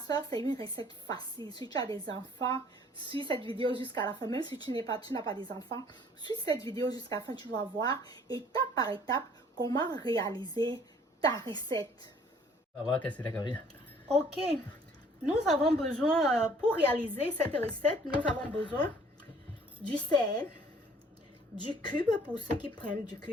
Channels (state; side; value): normal; both; correlation 0.57